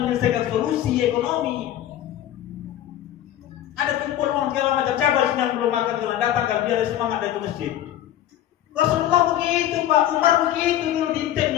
solusi ekonomi. Ada kumpul orang segala macam, cabang yang belum makan jalan datang kan biar semangat dari ke masjid. Rasulullah begitu, Pak Umar begitu dulu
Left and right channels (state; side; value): quieter; right; 12.3 dB